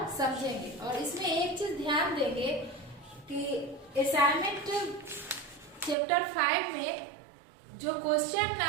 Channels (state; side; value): drops out; left; at 6.0 s